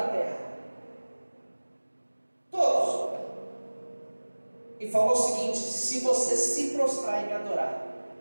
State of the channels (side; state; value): both; inverted; correlation -1.00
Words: terra. Todos. E falou o seguinte: se você se prostrar e me adorar,